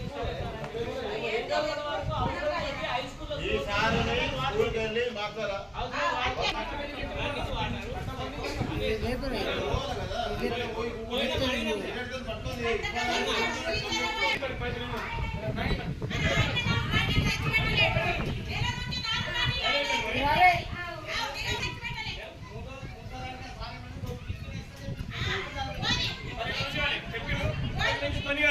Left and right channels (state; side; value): identical; both; correlation 1.00